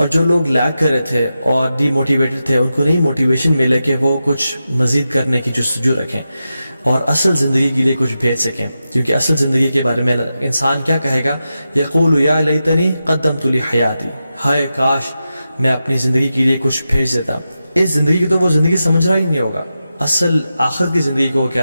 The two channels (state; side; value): inverted; both; correlation -0.90